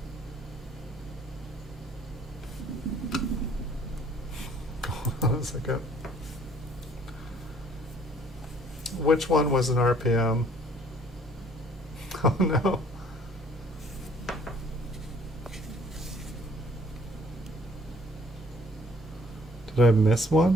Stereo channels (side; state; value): both; normal; correlation 0.58